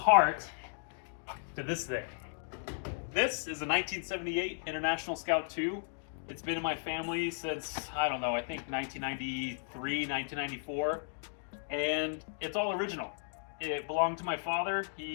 to this thing. This is a 1978 International Scout II. It's been in my family since, I don't know, I think 1993, 1994. And it's all original. It belonged to my father.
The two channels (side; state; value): right; silent; digital silence